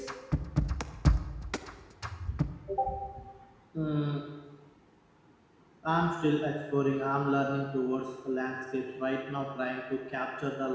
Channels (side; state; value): both; identical; correlation 1.00